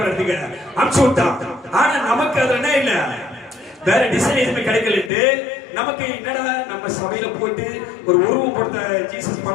எடுத்துக்க அனுப்பிச்சு விட்டான். ஆனா நமக்கு அது என்ன இல்ல, வேற டிசைன் எதுவுமே கிடைக்கலட்டு நமக்கு என்னடா நம்ம சபையில போட்டு ஒரு உருவம் போட்ட ஜீசஸ்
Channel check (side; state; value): right; drops out; at 5.1 s